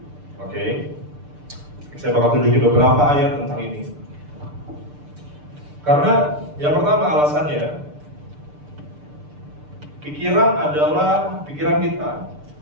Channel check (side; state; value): left; late; 6.8 ms